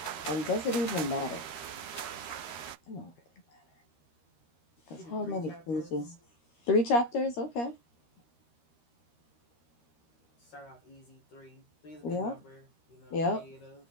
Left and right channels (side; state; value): right; late; 13 ms